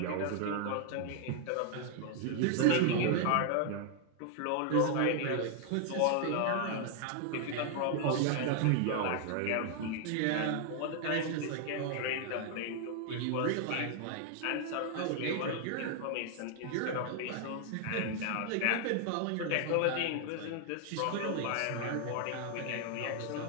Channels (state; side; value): different; both; correlation 0.00